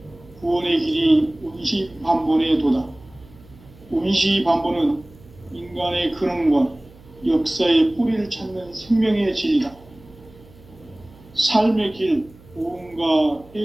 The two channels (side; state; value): right; noise; hum, 24 dB below the sound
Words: 구원의 길이 원시반본의 도다. 원시반본은 인간의 근원과 역사의 뿌리를 찾는 생명의 진리다. 삶의 길, 보험과